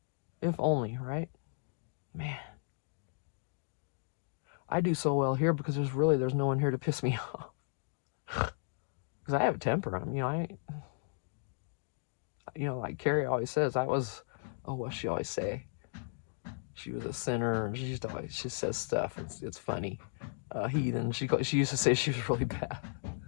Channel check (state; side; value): silent; right; digital silence